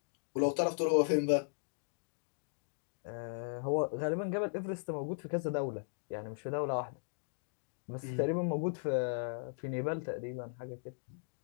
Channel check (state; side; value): silent; right; digital silence